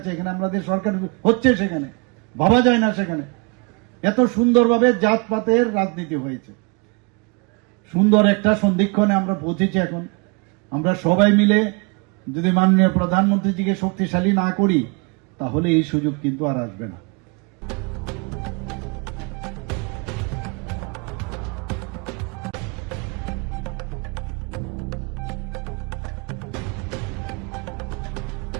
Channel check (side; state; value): left; quieter; 31.5 dB